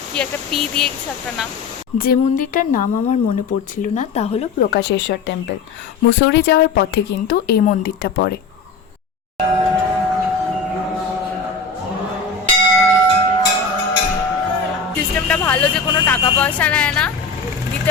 কি একটা পি দিয়ে কিছু একটা নাম। যে মন্দিরটার নাম আমার মনে পড়ছিল না তা হলো প্রকাশেশ্বর টেম্পল। মুসৌরি যাওয়ার পথে কিন্তু এই মন্দিরটা পড়ে। সিস্টেমটা ভালো যে কোনো টাকা পয়সা নেয় না,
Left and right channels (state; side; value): quieter; right; 4.6 dB